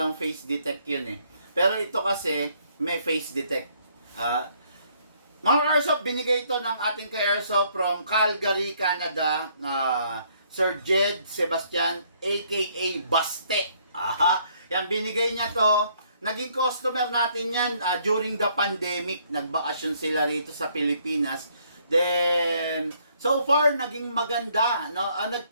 face detect yun, eh. Pero ito kasi, may face detect. Mga Airsoft, binigay ito ng ating ka-Airsoft from Calgary, Canada, Sir Jed Sebastian, aka Baste. Yan, binigay niya to. Naging customer natin yan during the pandemic. Nagbakasyon sila rito sa Pilipinas. Then, so far, naging maganda. No?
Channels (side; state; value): both; inverted; correlation -0.66